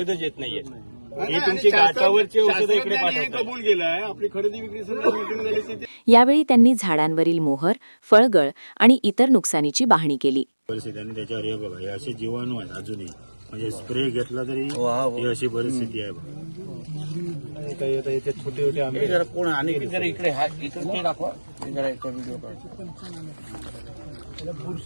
येत नाहीये. ही तुमची गाठावरची औषधं इकडे कबूल केलंय. आपली खरेदी विक्री झाली. यावेळी त्यांनी झाडांवरील मोहर, फळगळ आणि इतर नुकसानीची पाहणी केली. परिस्थिती आणि त्याच्यावर हे बघा, हे असे जीवाणू आहेत अजूनही, म्हणजे स्प्रे घेतला तरी ही अशी परिस्थिती आहे. छोटे छोटे आंबे कोण आणि इकडे इकडे दाखवा.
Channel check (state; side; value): inverted; both; correlation -1.00